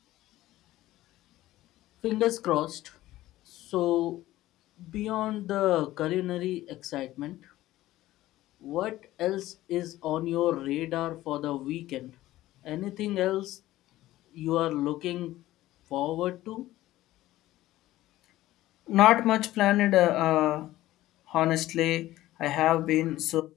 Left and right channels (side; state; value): right; quieter; 15.7 dB